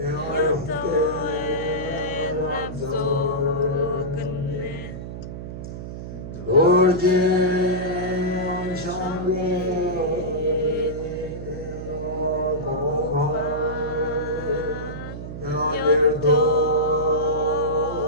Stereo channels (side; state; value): right; noise; hum, 9 dB below the sound